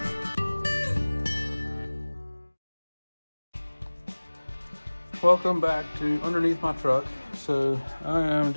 Welcome back to underneath my truck. So I am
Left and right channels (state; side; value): inverted; both; correlation -1.00